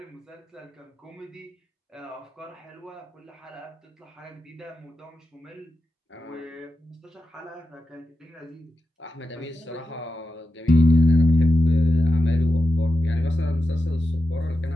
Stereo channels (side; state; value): both; normal; correlation 0.90